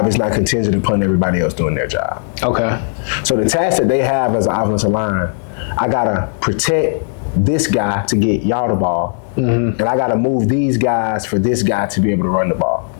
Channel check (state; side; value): silent; right; digital silence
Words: is not contingent upon everybody else doing their job. Okay. So the task that they have as an offensive line, I gotta protect this guy to get y'all the ball, and I gotta move these guys for this guy to be able to run the ball.